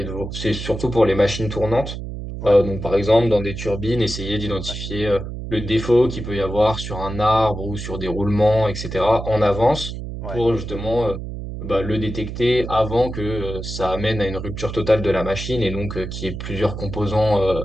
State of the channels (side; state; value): right; noise; hum, 8 dB below the sound